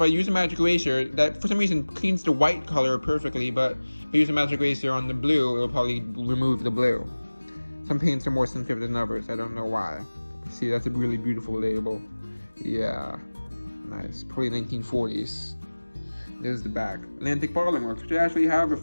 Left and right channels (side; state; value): both; inverted; correlation -1.00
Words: I use a magic eraser, that for some reason cleans the white color perfectly, but if I use a magic eraser on the blue, it'll probably remove the blue. Some paints are more sensitive than others, I don't know why. See, that's a really beautiful label. Yeah, nice, probably 1940s. There's the back. Atlantic Bottling Works, which I actually have a